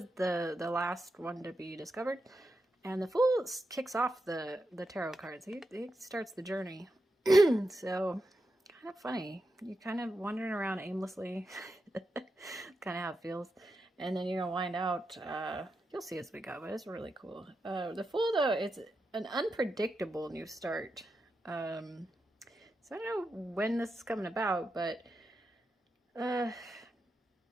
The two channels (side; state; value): both; normal; correlation 0.88